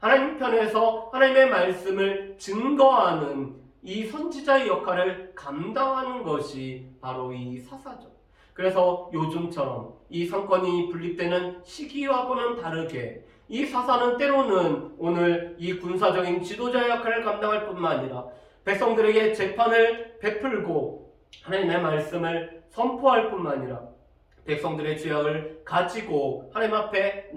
하나님 편에서 하나님의 말씀을 증거하는 이 선지자의 역할을 감당하는 것이 바로 이 사사죠. 그래서 요즘처럼 이 상권이 분립되는 시기와는 다르게 이 사사는 때로는 오늘 이 군사적인 지도자의 역할을 감당할 뿐만 아니라 백성들에게 재판을 베풀고 하나님의 말씀을 선포할 뿐만 아니라 백성들의 죄악을 가지고 하나님 앞에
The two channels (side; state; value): both; identical; correlation 1.00